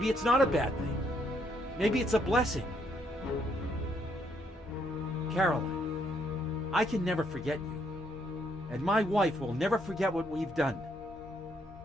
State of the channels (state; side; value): normal; both; correlation 0.72